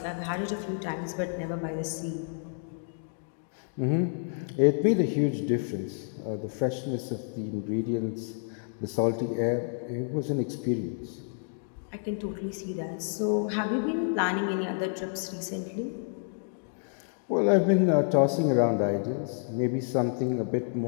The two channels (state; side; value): silent; right; digital silence